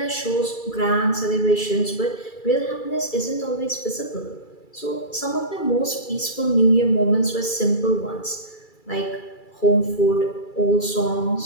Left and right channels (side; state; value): right; late; 2.3 ms